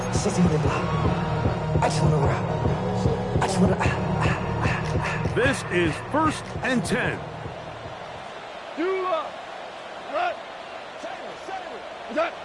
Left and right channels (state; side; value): identical; both; correlation 1.00